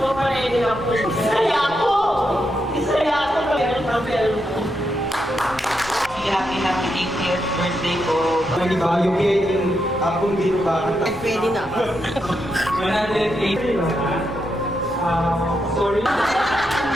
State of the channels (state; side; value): noise; left; rumble, 20 dB below the sound